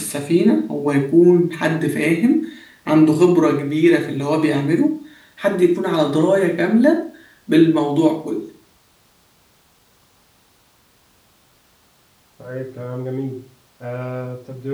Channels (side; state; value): both; identical; correlation 1.00